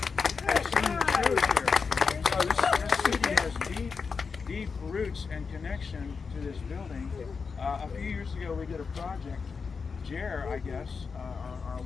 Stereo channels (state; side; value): quieter; right; 5.3 dB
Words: have seen shows here. So this city has deep roots and connection to this building. A few years ago, we did a project. Jer, I guess, our